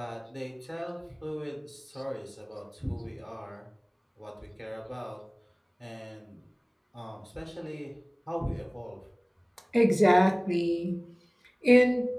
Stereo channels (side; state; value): both; identical; correlation 1.00